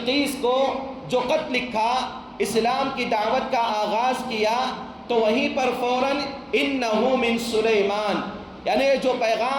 کو جو خط لکھا، اسلام کی دعوت کا آغاز کیا، تو وہیں پر فوراً انہ من سلیمان، یعنی جو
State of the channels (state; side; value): identical; both; correlation 1.00